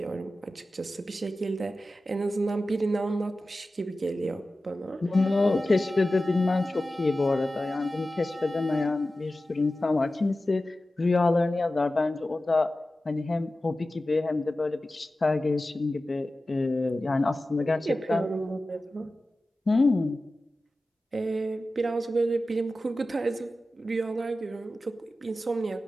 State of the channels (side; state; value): both; normal; correlation 0.95